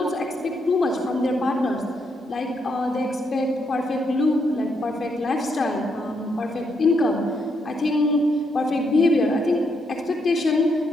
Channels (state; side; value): normal; both; correlation 0.77